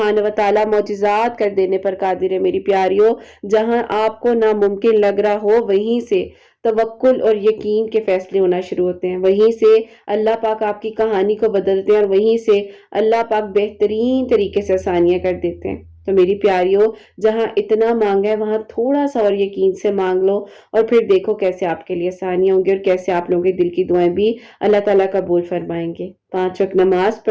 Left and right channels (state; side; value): identical; both; correlation 1.00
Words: و تعالیٰ معجزات کر دینے پر قادر ہے میری پیاریوں۔ جہاں آپ کو ناممکن لگ رہا ہو، وہیں سے توکل اور یقین کے فیصلے ہونا شروع ہوتے ہیں، وہیں سے اللہ پاک آپ کی کہانی کو بدلتے ہیں، اور وہیں سے اللہ پاک بہترین طریقے سے آسانیاں کر دیتے ہیں۔ تو میری پیاریوں جہاں اتنا مانگا ہے وہاں تھوڑا سا اور یقین سے مانگ لو اور پھر دیکھو کیسے آپ کے لیے آسانیاں ہوں گی اور کیسے آپ لوگوں کے دل کی دعائیں بھی اللہ تعالیٰ قبول فرمائیں گے۔ 5 وقت نماز